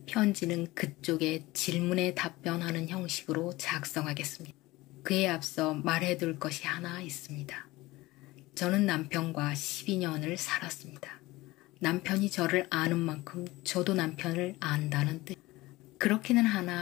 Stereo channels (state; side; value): quieter; right; 19.7 dB